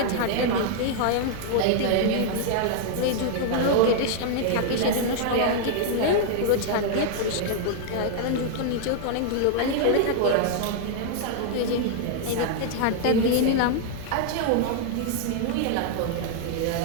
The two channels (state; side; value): different; both; correlation 0.00